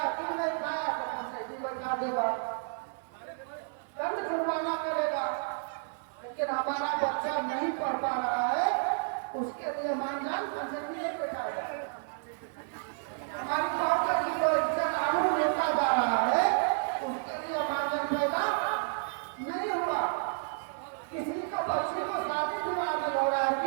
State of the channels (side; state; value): left; silent; 57 dB below the other